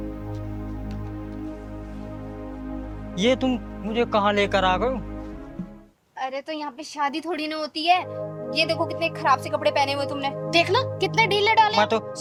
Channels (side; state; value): both; identical; correlation 1.00